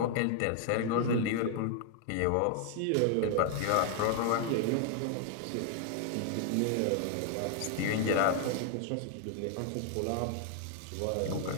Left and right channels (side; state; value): both; different; correlation 0.00